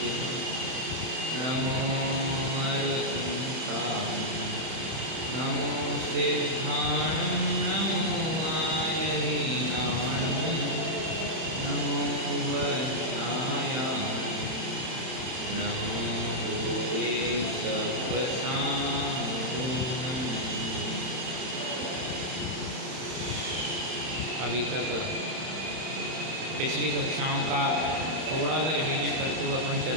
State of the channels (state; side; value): late; left; 31 ms